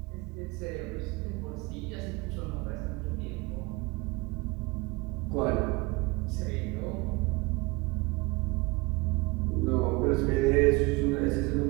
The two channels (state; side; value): quieter; left; 24.9 dB